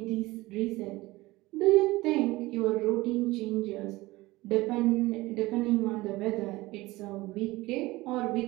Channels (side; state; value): left; quieter; 19.8 dB